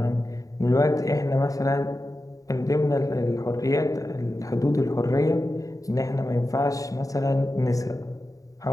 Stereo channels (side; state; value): right; late; 0.16 ms